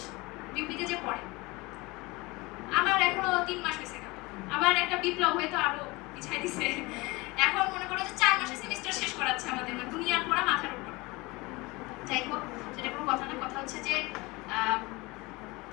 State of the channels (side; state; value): right; quieter; 23.4 dB